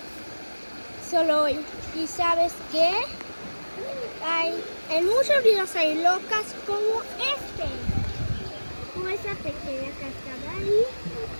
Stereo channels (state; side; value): inverted; both; correlation -1.00